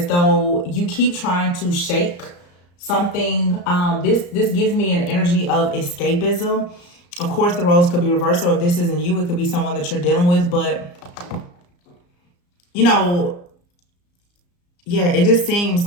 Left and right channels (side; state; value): right; late; 34 ms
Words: though you keep trying to shake something. This gives me an energy of escapism. Of course, the roles could be reversed, or if this isn't you, it could be someone that you're dealing with. But, you know, yeah, it just seems